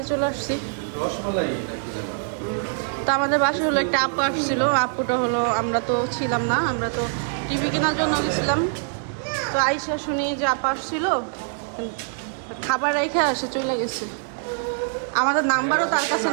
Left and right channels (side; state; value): left; silent; digital silence